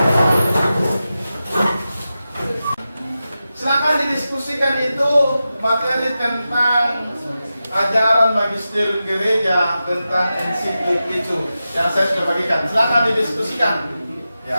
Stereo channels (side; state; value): both; inverted; correlation -0.92